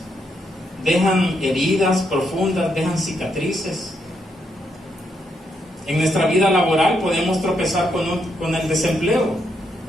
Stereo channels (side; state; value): both; normal; correlation 0.78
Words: dejan heridas profundas, dejan cicatrices. En nuestra vida laboral podemos tropezar con el desempleo.